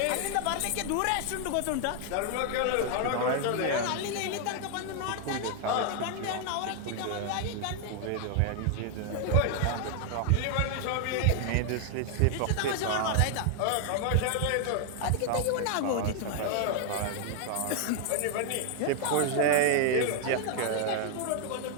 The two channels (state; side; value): different; both; correlation 0.00